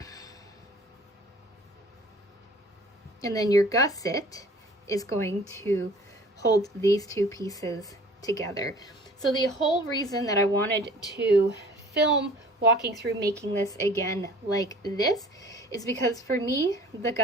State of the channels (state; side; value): normal; both; correlation 0.49